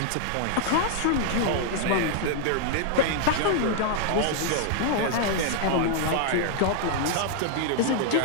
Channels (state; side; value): different; both; correlation 0.00